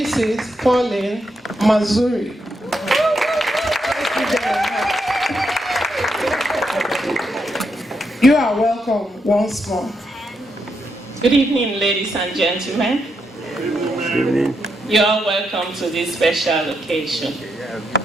Pauline Mazuri. You are welcome once more. Good evening, ladies and gentlemen. Good evening. You are welcome to this special occasion.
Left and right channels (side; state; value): both; normal; correlation 0.81